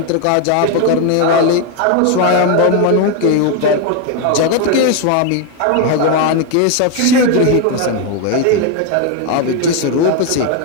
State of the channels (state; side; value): different; both; correlation 0.01